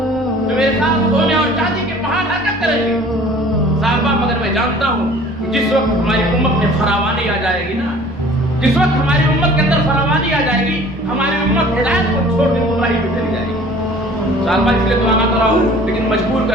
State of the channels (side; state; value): both; normal; correlation 0.49